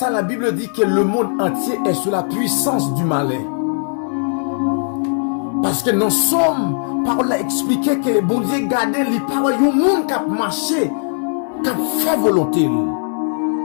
la Bible dit que le monde entier est sous la puissance du malin. Parce que nous sommes, parole a expliqué que bon Dieu gardait les paroles du monde qui a marché, qui a fait volonté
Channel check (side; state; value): right; silent; 65 dB below the other